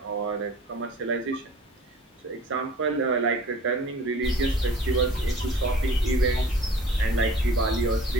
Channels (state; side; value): normal; both; correlation 0.47